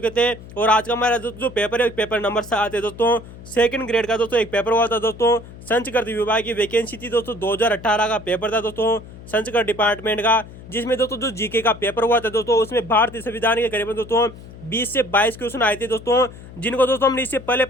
थे और आज का हमारा दोस्तों जो पेपर है पेपर नंबर 7 है दोस्तों। सेकंड ग्रेड का दोस्तों एक पेपर हुआ था दोस्तों, संस्कृत विभाग की वैकेंसी थी दोस्तों, 2018 का पेपर था दोस्तों संस्कृत डिपार्टमेंट का, जिसमें दोस्तों जो जीके का पेपर हुआ था दोस्तों उसमें भारतीय संविधान के करीबन दोस्तों 20 से 22 क्वेश्चन आए थे दोस्तों, जिनको दोस्तों हमने इससे पहले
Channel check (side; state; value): left; noise; hum, 16 dB below the sound